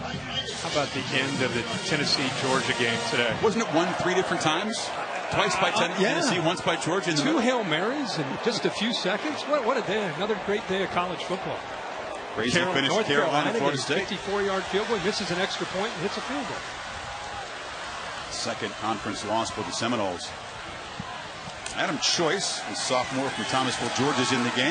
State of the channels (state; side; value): identical; both; correlation 1.00